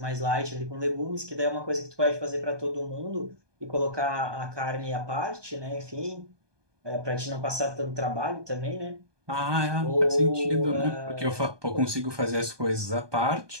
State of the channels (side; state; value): left; late; 1.2 ms